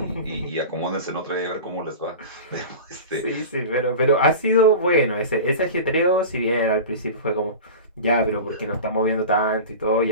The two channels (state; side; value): inverted; both; correlation -0.32